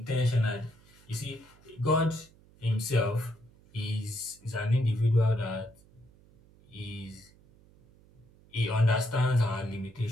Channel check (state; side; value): noise; right; hum, 27 dB below the sound